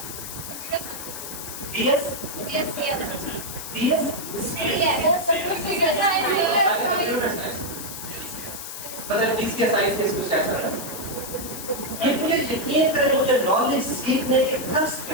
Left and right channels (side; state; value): left; noise; hiss, 9 dB below the sound